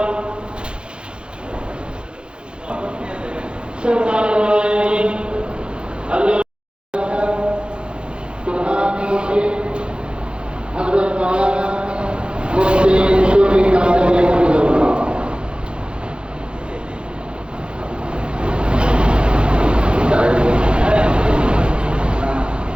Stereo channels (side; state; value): left; late; 0.053 ms